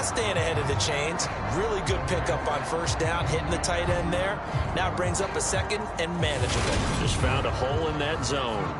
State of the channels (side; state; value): both; identical; correlation 1.00